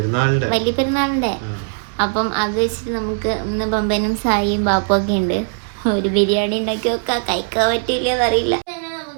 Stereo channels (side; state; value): left; silent; 64 dB below the other